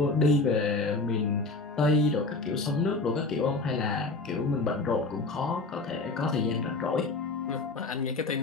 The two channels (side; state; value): right; quieter; 3.4 dB